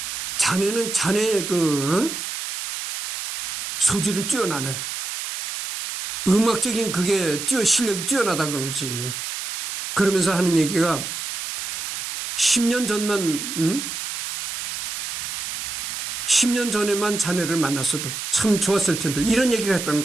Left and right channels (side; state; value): right; noise; hiss, 6 dB below the sound